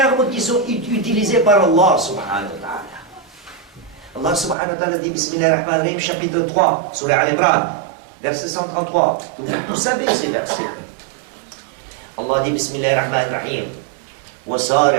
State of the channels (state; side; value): drops out; left; at 4.5 s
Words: qui sont utilisés par Allah subhanahu wa ta'ala. Allah subhanahu wa ta'ala dit Bismillahirrahmanirrahim, chapitre 3, surah Al-Imran, verset 133. Vous savez ces versets. Allah dit Bismillahirrahmanirrahim.